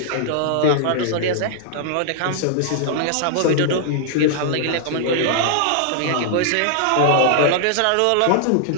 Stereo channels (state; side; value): different; both; correlation -0.01